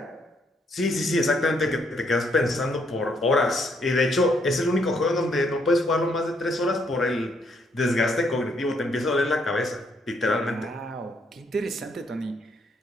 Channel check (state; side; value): normal; both; correlation 0.72